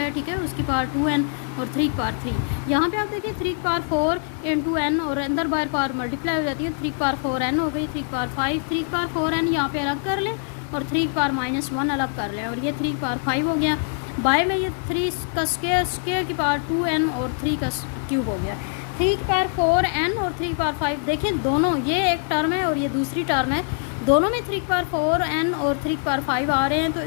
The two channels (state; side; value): silent; right; 61 dB below the other